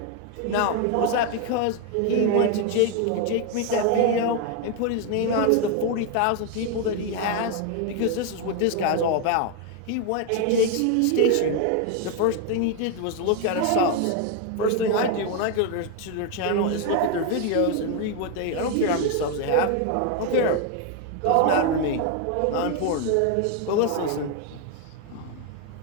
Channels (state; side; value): different; both; correlation 0.01